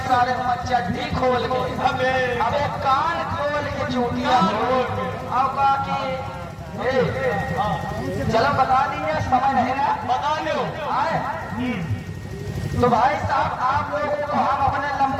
सारे चड्ढी खोल के हमें अब एक कान खोल के चूटिया अब बाकी चलो बता दीजिए समय नहीं ना बता लो। आए तो भाई साहब आप लोगों को हम अपने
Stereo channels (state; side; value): identical; both; correlation 1.00